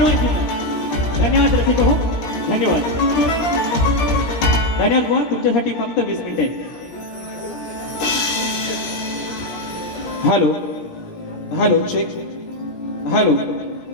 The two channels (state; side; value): late; right; 17 ms